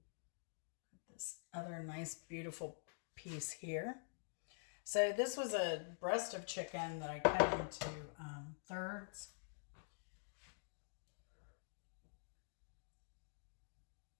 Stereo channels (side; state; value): right; silent; digital silence